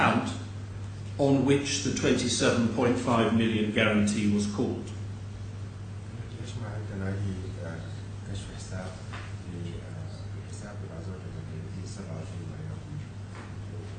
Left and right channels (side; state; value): both; identical; correlation 1.00